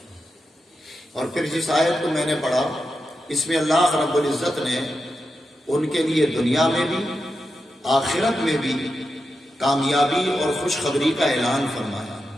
اور پھر جس آیت کو میں نے پڑھا اس میں اللہ رب العزت نے ان کے لیے دنیا میں بھی آخرت میں بھی کامیابی اور خوشخبری کا اعلان فرمایا،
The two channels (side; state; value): both; normal; correlation 0.88